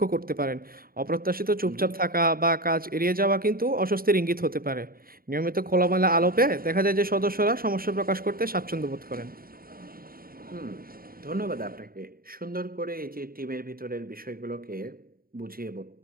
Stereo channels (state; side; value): late; left; 0.43 ms